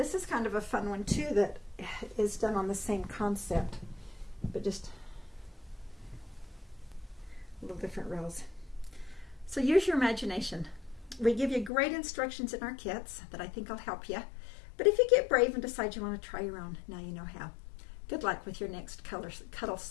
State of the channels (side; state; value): right; drops out; at 11.7 s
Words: is kind of a fun one too that is done on the same concept, but just a little different rows. So use your imagination. We give you great instructions in our kits that I think will help you. But if you get brave and decide you want to try your own, now you know how. Good luck with your next Cuddle